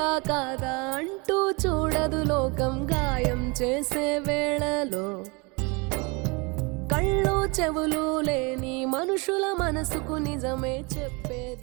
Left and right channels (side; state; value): left; quieter; 29.0 dB